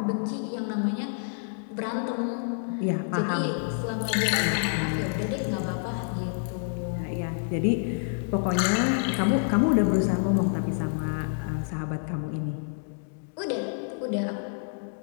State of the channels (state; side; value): silent; right; digital silence